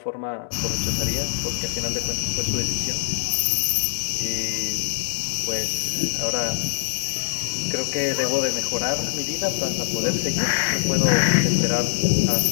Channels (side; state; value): right; silent; digital silence